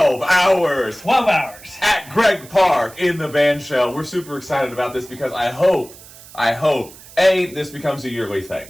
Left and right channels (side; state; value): right; noise; hiss, 20 dB below the sound